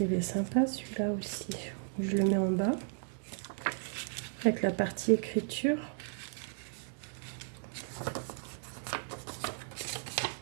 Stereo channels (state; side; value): silent; left; digital silence